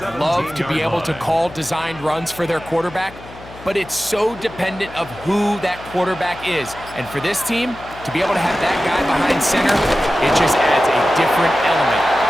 to be able to call designed runs for their quarterback, but it's so dependent of who that quarterback is. And for this team, to be able to have that guy behind center, it just adds a different element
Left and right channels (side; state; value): left; noise; hum, 18 dB below the sound